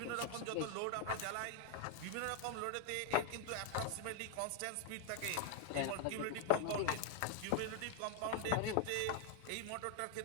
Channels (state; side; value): different; both; correlation 0.00